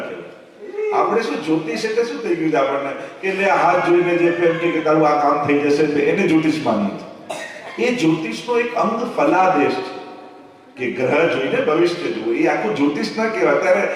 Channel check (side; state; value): both; identical; correlation 1.00